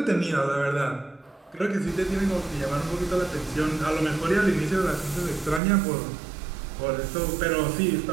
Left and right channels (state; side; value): drops out; left; at 5.6 s